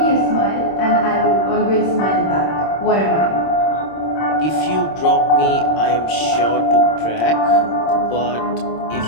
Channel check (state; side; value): late; right; 26 ms